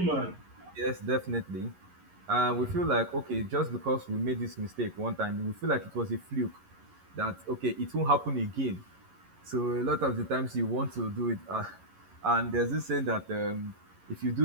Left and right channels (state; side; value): late; left; 11 ms